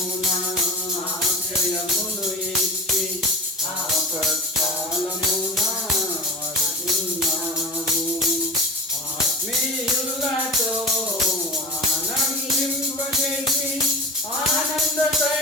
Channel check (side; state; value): both; normal; correlation 0.30